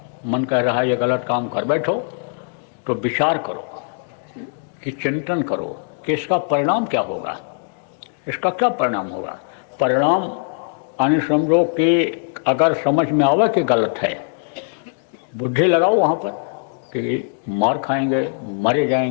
मन कह रहा है ये गलत काम कर बैठो, तो विचार करो कि चिंतन करो कि इसका परिणाम क्या होगा, इसका क्या परिणाम होगा। परिणाम समझो कि अगर समझ में आवे कि गलत है, बुद्धि लगाओ वहाँ पर कि मार खाएंगे, मरे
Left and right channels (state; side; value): silent; right; digital silence